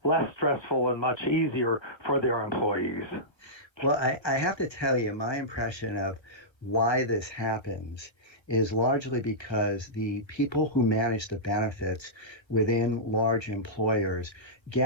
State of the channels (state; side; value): late; right; 1.3 ms